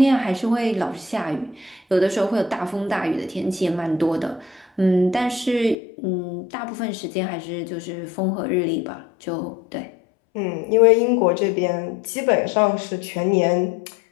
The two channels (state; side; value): drops out; right; at 5.8 s